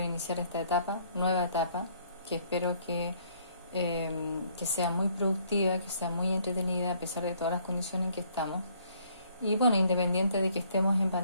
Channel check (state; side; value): inverted; both; correlation -0.64